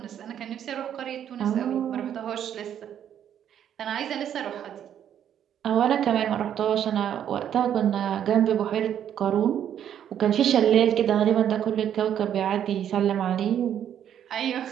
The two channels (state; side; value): quieter; left; 9.7 dB